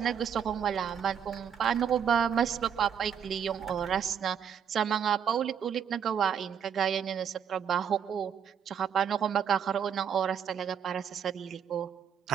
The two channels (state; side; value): quieter; left; 8.0 dB